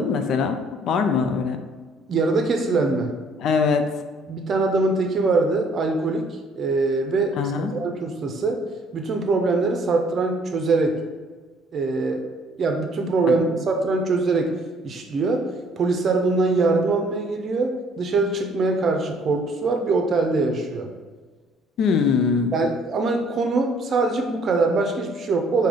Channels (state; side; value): normal; both; correlation 0.60